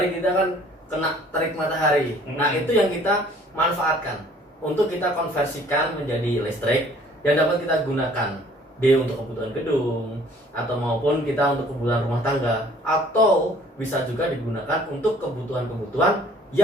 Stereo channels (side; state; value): both; normal; correlation 0.55